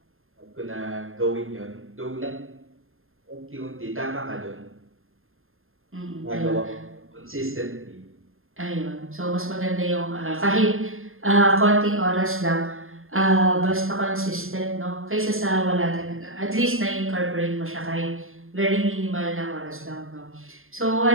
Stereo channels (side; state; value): left; late; 0.60 ms